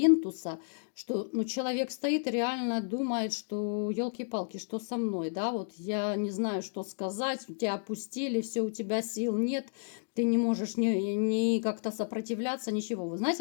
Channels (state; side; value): silent; right; digital silence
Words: что ну, человек стоит и реально думает, что елки-палки, что со мной, да, вот я не знаю, что сказать, тебя опустили, все, у тебя сил нет, ты не можешь ни как-то сопротивляться, ничего. Вы